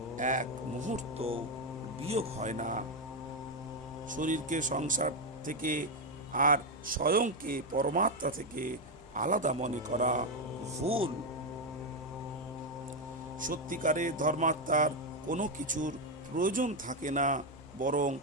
এক মুহূর্ত বিয়োগ হয় না। শরীরকে সংসার থেকে আর স্বয়ংকে পরমাত্মা থেকে আলাদা মনে করা ভুল। সত্যিকারের ধর্মাত্মার কোনো কিছুর প্রয়োজন থাকে না, বরং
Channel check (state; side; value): noise; right; hum, 27 dB below the sound